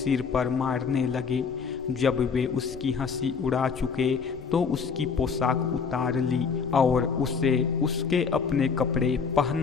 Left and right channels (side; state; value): right; quieter; 5.8 dB